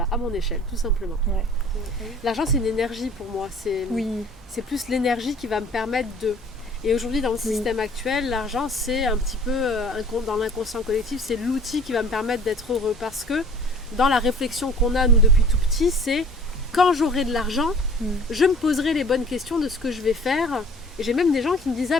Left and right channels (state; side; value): normal; both; correlation 0.50